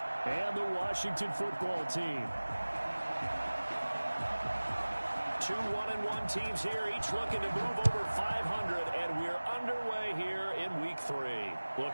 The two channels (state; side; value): inverted; both; correlation -1.00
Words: and the Washington football team. Two 1-1 teams here, each looking to move over 500, and we're underway here in Week 3.